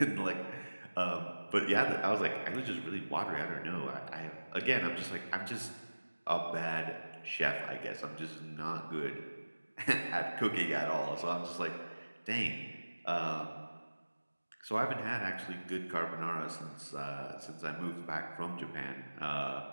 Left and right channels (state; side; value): inverted; both; correlation -1.00